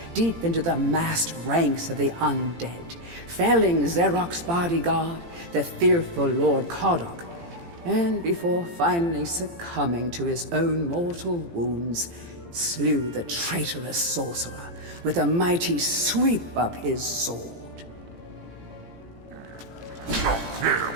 deep into the massed ranks of the undead, felling Xerok's bodyguard, the fearful Lord Kodok, and before finally succumbing to his own mortal wounds, slew the traitorous sorcerer with a mighty sweep of his sword.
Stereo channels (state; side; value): late; left; 18 ms